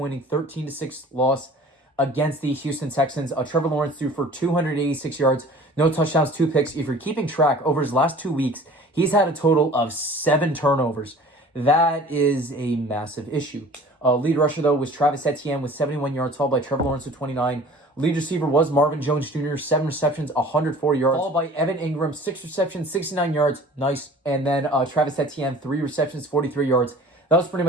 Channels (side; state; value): both; normal; correlation 0.46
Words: 13-6 loss against the Houston Texans. Trevor Lawrence threw for 286 yards, no touchdowns, 2 picks. If you're keeping track, over his last 2 weeks, he's had a total of 7 turnovers. That is a massive issue. Lead rusher, though, was Travis Etienne with 71 yards, followed by Trevor Lawrence with 29. Lead receiver was Marvin Jones Jr., 7 receptions, 104 yards, followed by Evan Ingram, 6 receptions, 69 yards. Nice. And then Travis Etienne, 3 receptions, 43 yards. That was pretty